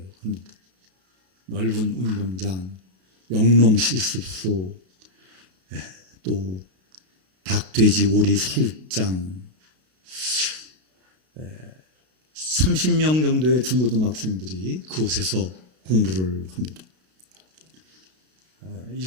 합니다. 넓은 운동장, 영농 실습소, 또 닭, 돼지, 오리 사육장, 30명 정도의 중고등학생들이 그곳에서 공부를 합니다.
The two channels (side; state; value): left; late; 32 ms